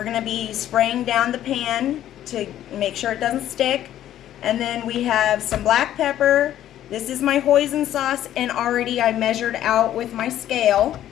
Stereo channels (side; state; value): right; quieter; 12.1 dB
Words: going to be spraying down the pan to make sure it doesn't stick. And then we have some black pepper. This is my hoisin sauce, and already I measured out with my scale